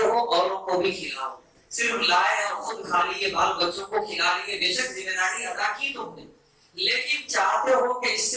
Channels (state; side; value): identical; both; correlation 1.00